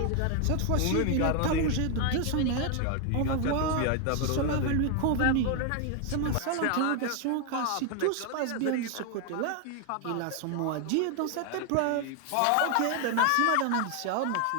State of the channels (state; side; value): different; both; correlation 0.01